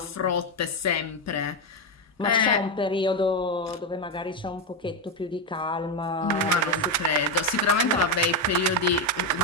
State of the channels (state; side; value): normal; both; correlation 0.08